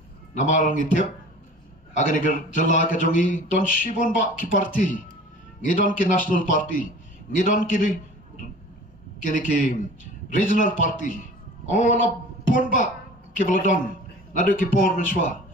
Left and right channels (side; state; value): both; normal; correlation 0.43